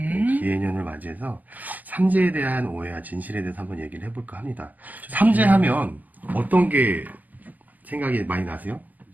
기해년을 맞이해서 삼재에 대한 오해와 진실에 대해서 한번 얘기를 해볼까 합니다. 삼재하면 어떤 게 생각이 많이 나세요?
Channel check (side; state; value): left; late; 0.081 ms